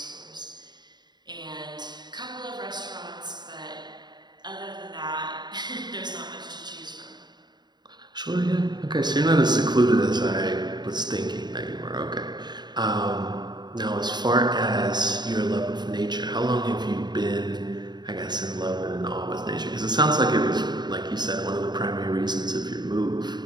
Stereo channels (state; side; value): late; left; 0.21 ms